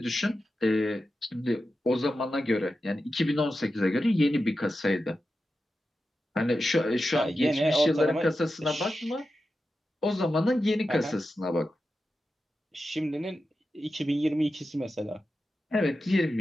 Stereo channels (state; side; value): normal; both; correlation 0.91